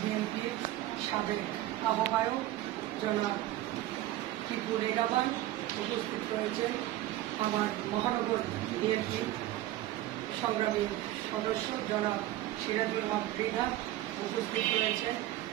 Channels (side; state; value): left; quieter; 14.9 dB